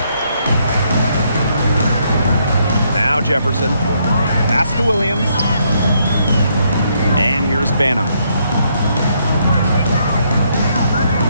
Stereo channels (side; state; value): both; inverted; correlation -0.73